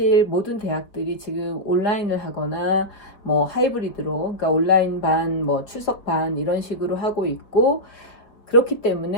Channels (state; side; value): late; right; 4.8 ms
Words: 모든 대학들이 지금 온라인을 하거나 뭐 하이브리드로, 그러니까 온라인 반, 뭐 출석 반 이런 식으로 하고 있고, 그렇기